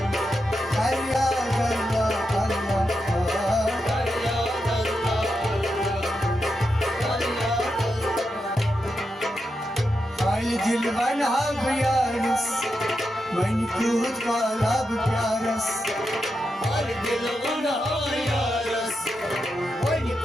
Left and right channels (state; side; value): normal; both; correlation 0.86